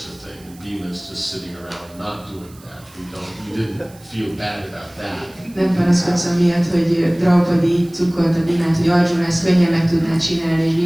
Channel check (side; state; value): right; noise; hiss, 25 dB below the sound